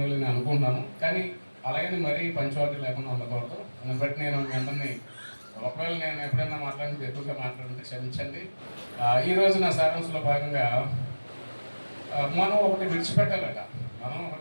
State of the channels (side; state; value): both; inverted; correlation -1.00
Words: నేను అనుకుంటున్నాను. కానీ అలాగని మరీ పంచువాలిటీ లేకుండా ఉండకూడదు. దాన్ని బట్టి నేను మీ అందరినీ, ఒకవేళ నేను ఎప్పుడైనా మాట్లాడితే ఎక్కువగా మాట్లాడితే క్షమించండి. ఈరోజు నా సారాంశంలో భాగంగా మనం ఒకటి విడిచిపెట్టాలట. అది